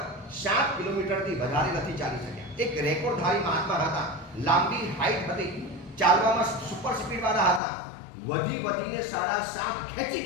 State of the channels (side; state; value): right; drops out; at 7.6 s